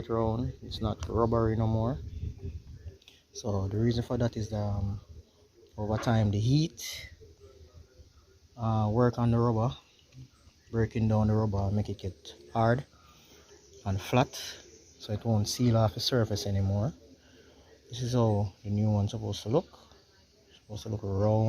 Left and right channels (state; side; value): identical; both; correlation 1.00